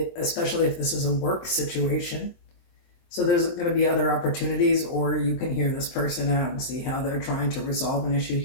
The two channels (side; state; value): right; late; 23 ms